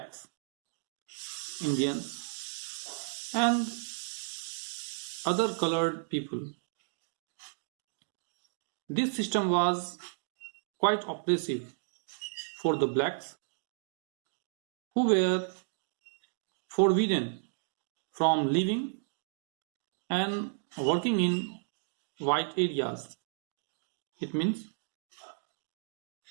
Indians, and other colored people. This system was quite oppressive for the blacks who were forbidden from living and working in white areas. It means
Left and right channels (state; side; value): silent; left; digital silence